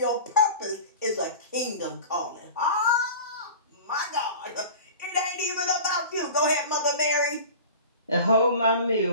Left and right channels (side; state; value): both; inverted; correlation -0.36